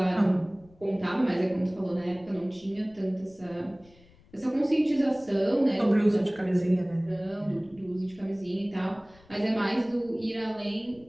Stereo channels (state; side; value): noise; left; rumble, 27 dB below the sound